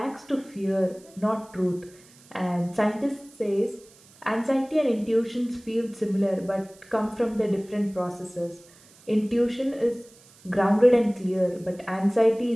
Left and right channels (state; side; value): noise; right; hiss, 26 dB below the sound